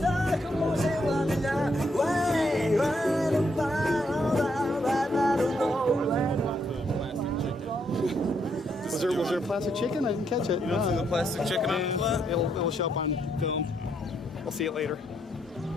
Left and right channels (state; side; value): normal; both; correlation 0.75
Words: como se vanilla. Way, way, Was there a plastic chicken? I didn't catch it. You don't see the plastic chicken on the plate? It'll show up on film. I'll see it later.